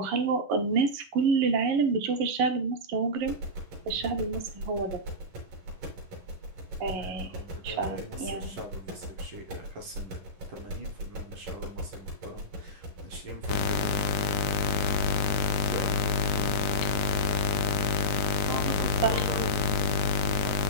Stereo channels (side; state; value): left; late; 9.8 ms